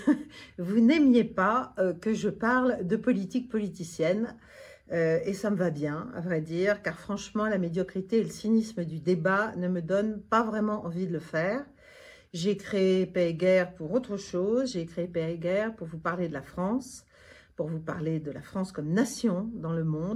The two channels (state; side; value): identical; both; correlation 1.00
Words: vous n'aimiez pas que je parle de politique politicienne. Et ça me va bien, à vrai dire, car franchement, la médiocrité et le cynisme du débat ne me donnent pas vraiment envie de le faire. J'ai créé Paix et Guerre pour autre chose. J'ai créé Paix et Guerre pour vous parler de la France, pour vous parler de la France comme nation dans le